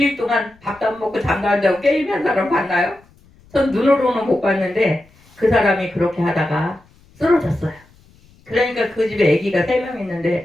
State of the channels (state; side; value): noise; left; rumble, 29 dB below the sound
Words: 동안 밥도 안 먹고 잠도 안 자고 게임한 사람 봤나요? 전 눈으로는 못 봤는데 그 사람이 그렇게 하다가 쓰러졌어요. 그러니까 그 집에 아기가 3명